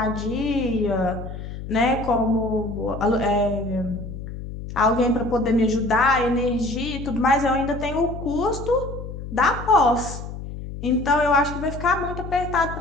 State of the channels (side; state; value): left; noise; hum, 9 dB below the sound